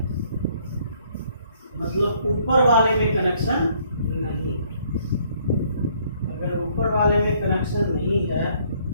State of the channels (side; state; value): both; inverted; correlation -0.64